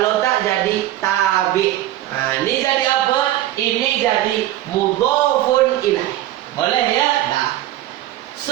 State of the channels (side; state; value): left; quieter; 14.2 dB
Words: tak jadi tabi'. Ini jadi apa? Ini jadi mudhafun ilaih. Boleh ya? Dah.